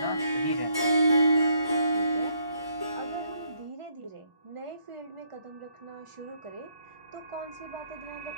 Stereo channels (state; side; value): inverted; both; correlation -0.72